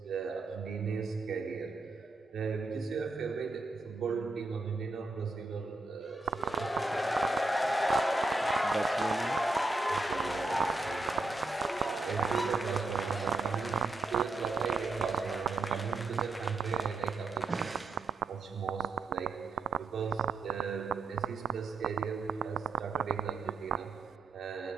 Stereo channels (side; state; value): left; quieter; 3.4 dB